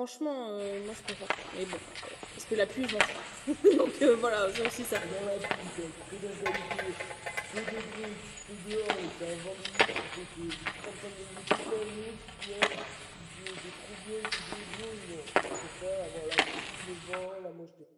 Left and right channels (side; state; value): both; identical; correlation 1.00